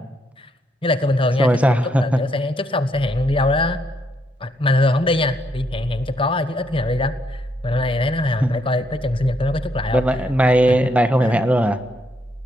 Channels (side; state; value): both; normal; correlation 0.75